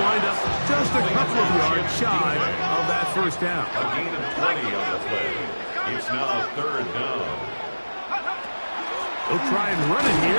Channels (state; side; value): inverted; both; correlation -1.00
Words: wind up just a couple of yards shy of that first down. A gain of 20 on the play. It's now third down. They'll try and run it